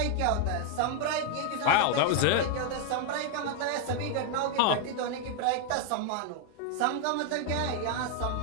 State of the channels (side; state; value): both; different; correlation 0.00